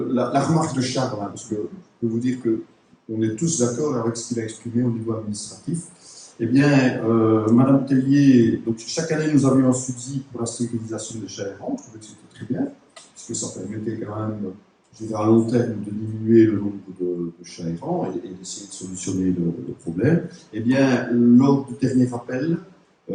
remarque de Charles, hein, parce que je peux vous dire qu'on est tous d'accord avec ce qu'il a exprimé au niveau administratif. Eh bien, Madame Tellier, donc chaque année nous avions un subside pour la stérilisation des chats errants, je trouvais que c'était très bien, puisque ça permettait quand même, je dirais à long terme, de diminuer le nombre de chats errants et d'essayer de solutionner le problème. Eh bien, lors du dernier appel,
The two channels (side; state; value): both; identical; correlation 1.00